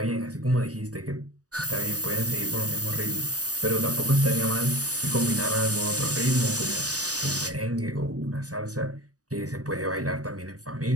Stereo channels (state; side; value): late; left; 0.67 ms